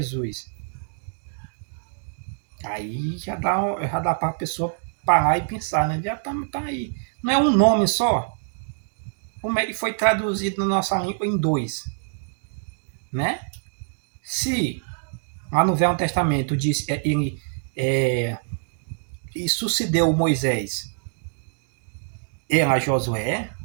Aí já dá para a pessoa parar e pensar, né? Já tá aí. Não é um nome só? Como ele foi traduzido na nossa língua em dois, né? Se lá no Velho Testamento diz ele e sucedeu Moisés era Josué,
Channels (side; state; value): left; silent; digital silence